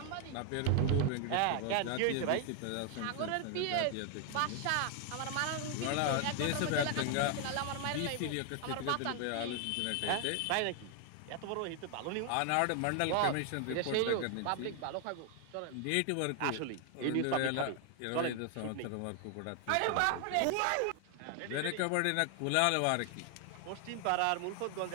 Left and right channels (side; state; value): both; different; correlation 0.00